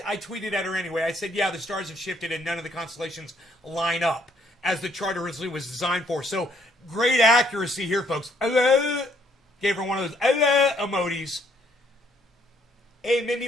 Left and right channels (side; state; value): both; normal; correlation 0.67